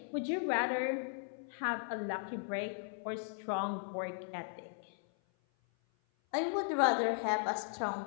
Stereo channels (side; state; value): right; silent; 53 dB below the other